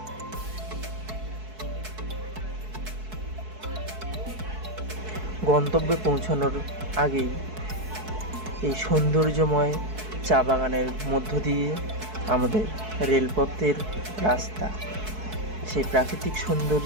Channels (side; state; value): left; late; 4.6 ms